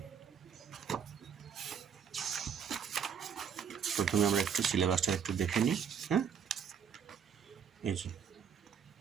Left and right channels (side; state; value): left; quieter; 7.4 dB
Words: প্রথমে আমরা একটু সিলেবাসটা একটু দেখে নিই। এই যে